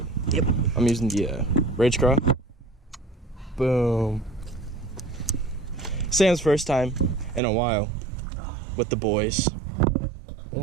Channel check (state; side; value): drops out; left; at 7.4 s